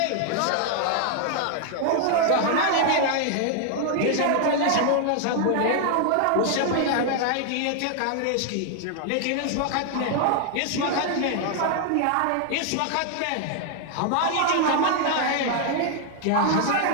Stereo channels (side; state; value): both; different; correlation 0.00